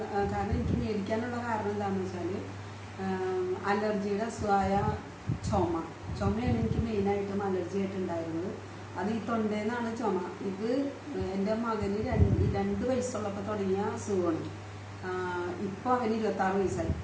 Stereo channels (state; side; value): identical; both; correlation 1.00